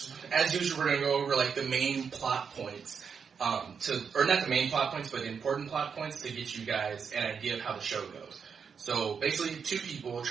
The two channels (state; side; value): quieter; left; 6.4 dB